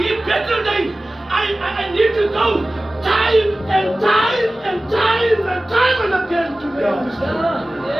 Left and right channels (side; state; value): both; normal; correlation 0.97